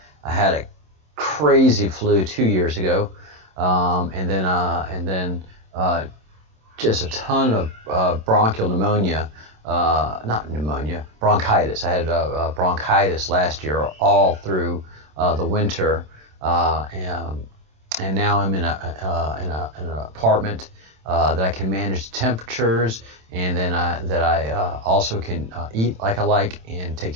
I had a crazy flu 2 years ago, and then just a ton of bronchial pneumonia. Not pneumonia, bronchitis. I had bronchitis last year all through the winter, and now I'm in an apartment that I can manage the temperatures, and then I also can eat like I like and take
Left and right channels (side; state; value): left; late; 27 ms